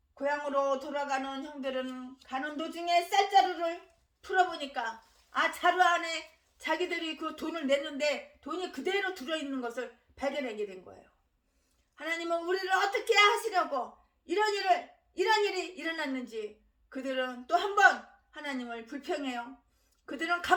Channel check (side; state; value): both; identical; correlation 1.00